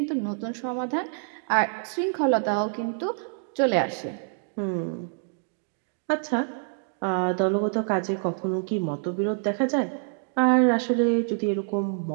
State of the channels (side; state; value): left; silent; 60 dB below the other